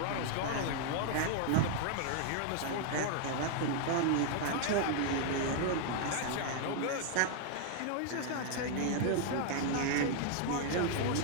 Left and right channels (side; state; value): both; different; correlation 0.00